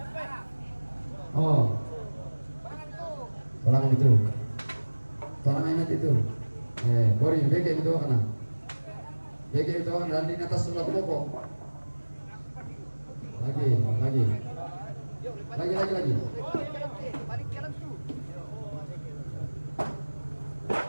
Oh. Tolong itu. Tolong ingat itu. Bori, bege itu kana. Bege itu kana di atas sudah pokok. Lagi.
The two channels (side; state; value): both; inverted; correlation -1.00